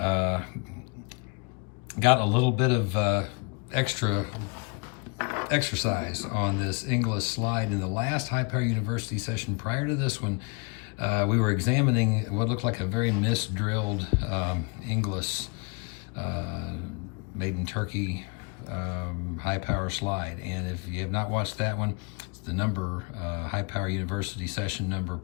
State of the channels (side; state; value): right; quieter; 32.2 dB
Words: a little bit of extra exercise on this Inglis slide in the last High Power University session. Prior to this one, we were examining what looked like a very misdrilled Inglis made in Turkey high power slide. And if you have not watched that one, it's the High Power University session number